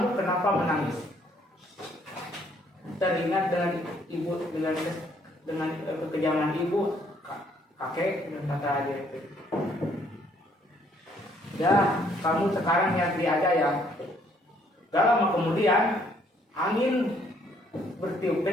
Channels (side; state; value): both; normal; correlation 0.65